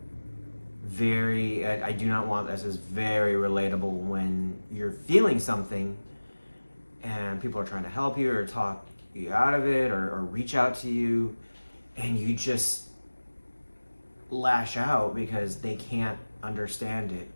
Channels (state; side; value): inverted; both; correlation -1.00